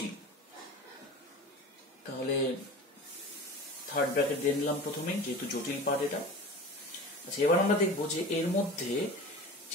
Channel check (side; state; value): both; normal; correlation 0.35